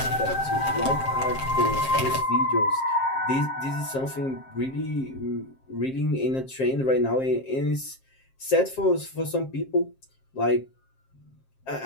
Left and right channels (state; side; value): late; right; 7.5 ms